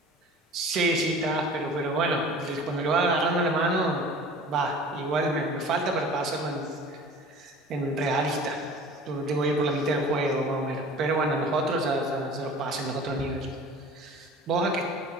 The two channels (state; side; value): normal; both; correlation 0.42